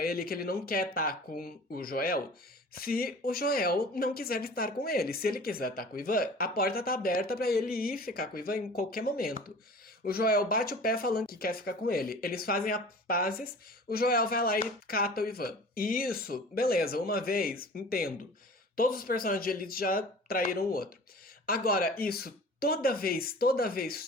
ele que ele não quer estar com o Joel se o Joel não quiser estar com ele. Se ele quiser estar com o Ivan, a porta tá aberta pra ele ir ficar com o Ivan em qualquer momento. O Joel bate o pé falando que quer ficar com ele. Eles fazem as pazes, o Joel vai lá e cata o Ivan. E isso, beleza, uma vez, entendo. Todos os personagens de Elite já traíram o outro. Agora, isso toda vez,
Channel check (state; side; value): normal; both; correlation 0.42